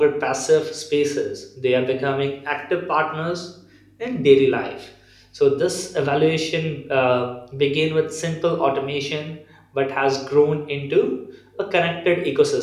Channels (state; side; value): identical; both; correlation 1.00